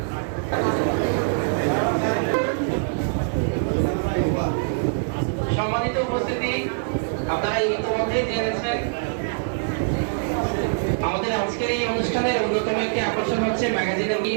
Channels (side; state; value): left; silent; digital silence